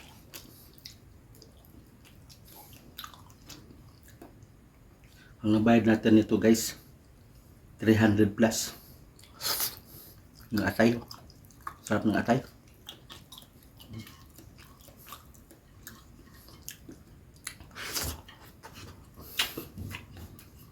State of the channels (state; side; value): identical; both; correlation 1.00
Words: Ang nabayad natin nito guys, 300 plus. Ng atay. Sarap ng atay.